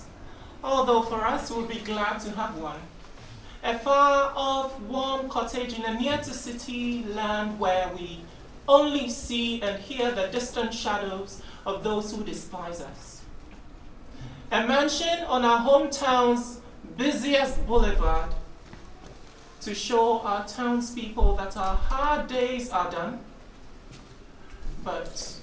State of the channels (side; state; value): both; identical; correlation 1.00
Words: although for us we'll be glad to have one. A far-off, warm cottage in a near-to-city land where we only see and hear the distant shadows of those who despise us. A mansion on our hometown's busiest boulevard to show our townspeople that our hard days are done, but